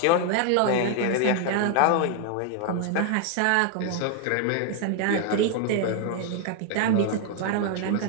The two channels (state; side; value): different; both; correlation 0.00